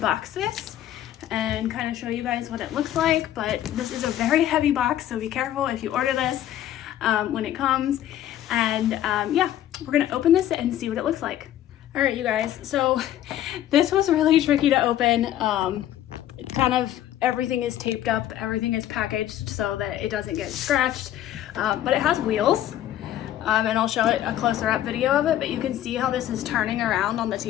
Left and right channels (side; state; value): right; quieter; 12.2 dB